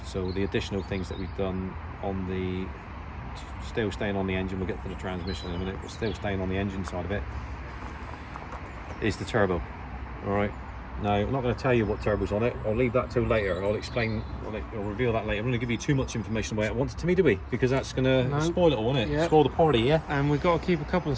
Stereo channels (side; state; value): both; identical; correlation 1.00